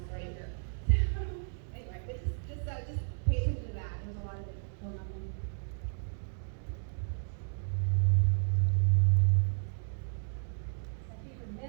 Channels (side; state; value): left; silent; 56 dB below the other